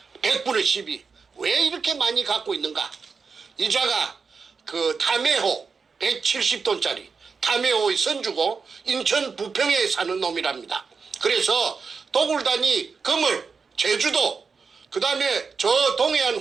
100분의 12. 왜 이렇게 많이 갖고 있는가? 이자가 그 담해호 170돈짜리 담해호의 선주고 인천 부평에 사는 놈이랍니다. 그래서 도굴단이 금을 제주도 그 다음에 저 동해안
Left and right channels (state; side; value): quieter; left; 5.2 dB